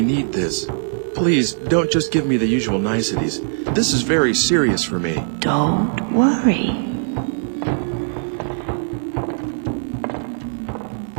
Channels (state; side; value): silent; left; 63 dB below the other